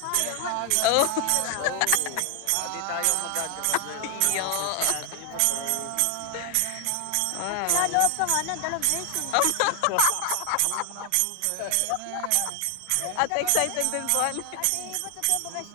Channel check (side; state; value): both; different; correlation 0.00